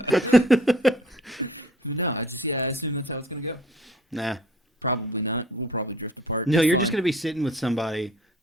No, I assume that's how it's going to go. Nah. Probably not. We'll probably drift apart. No, you're just gonna be sitting with somebody,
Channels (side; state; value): both; normal; correlation 0.52